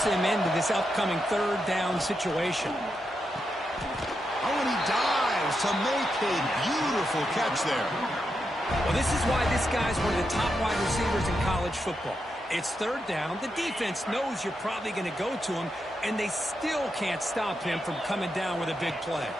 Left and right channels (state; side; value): normal; both; correlation 0.85